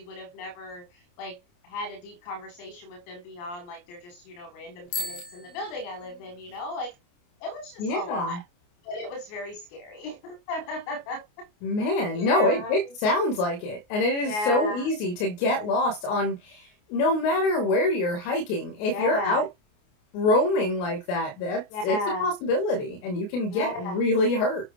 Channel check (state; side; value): late; right; 28 ms